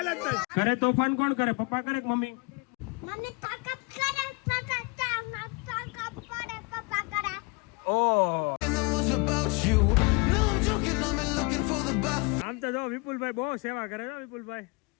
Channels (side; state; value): right; quieter; 28.4 dB